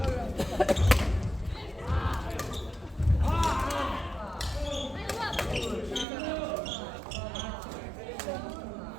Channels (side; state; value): left; drops out; at 6.1 s